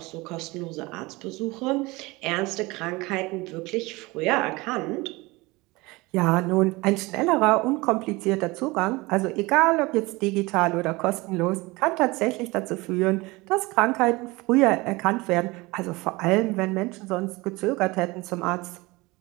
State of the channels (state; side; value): quieter; left; 22.8 dB